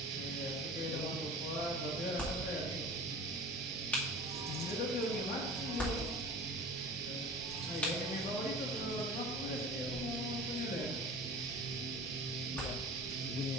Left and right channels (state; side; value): normal; both; correlation 0.39